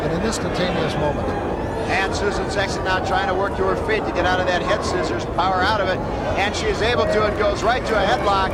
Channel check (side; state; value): both; identical; correlation 1.00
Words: in an instantaneous moment. And Susan Sexton now trying to work to her feet to get out of that head scissors, power out of it, and she is able to, and goes right to a headlock